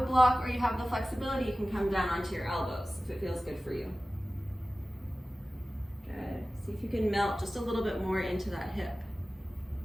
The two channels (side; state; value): both; normal; correlation 0.96